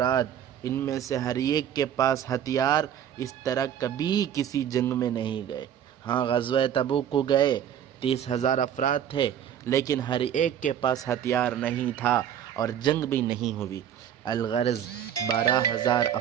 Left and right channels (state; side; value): quieter; left; 9.6 dB